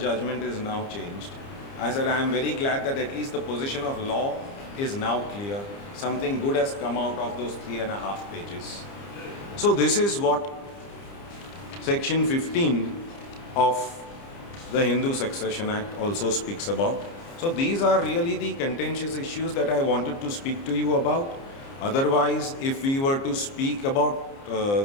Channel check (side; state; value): right; late; 30 ms